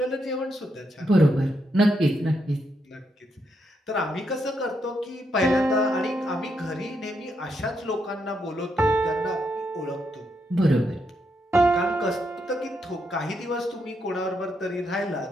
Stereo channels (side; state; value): both; normal; correlation 0.80